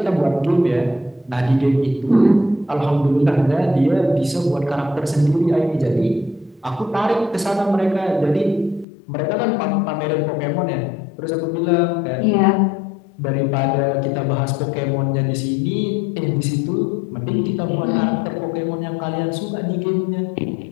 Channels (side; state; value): right; drops out; at 8.8 s